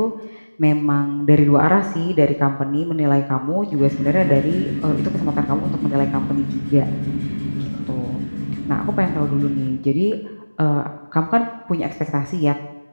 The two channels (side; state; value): both; inverted; correlation -1.00